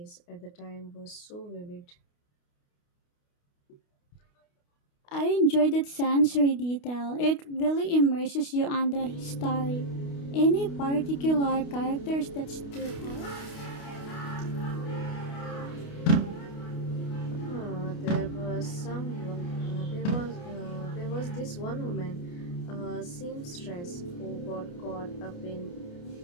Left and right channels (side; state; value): right; late; 29 ms